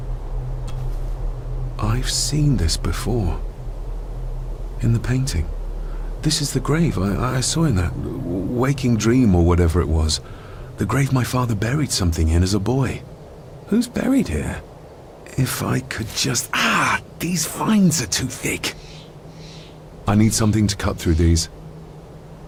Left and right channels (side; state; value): both; identical; correlation 1.00